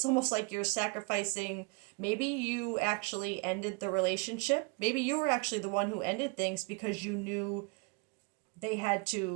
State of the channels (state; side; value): quieter; left; 31.6 dB